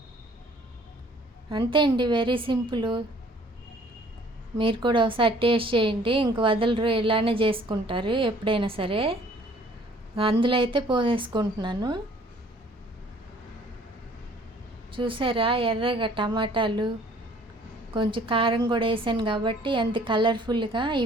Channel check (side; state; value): both; normal; correlation 0.56